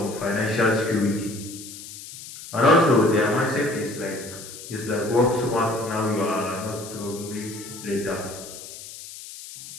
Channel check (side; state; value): left; noise; hiss, 13 dB below the sound